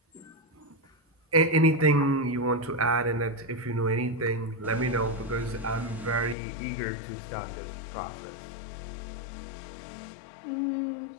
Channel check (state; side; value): drops out; right; at 6.4 s